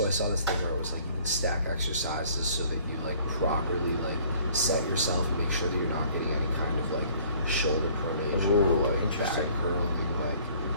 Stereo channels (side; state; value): both; inverted; correlation -0.55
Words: I saw this thing where it was like you can stack exercises so that you like properly like set yourself and make sure that you're not getting any kind of like shoulder pronation or like back curling. Like,